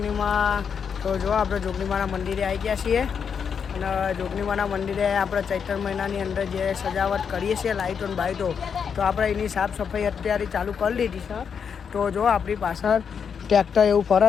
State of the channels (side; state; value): right; quieter; 6.8 dB